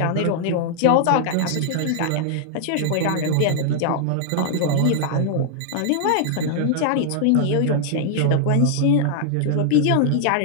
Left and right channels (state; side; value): different; both; correlation -0.01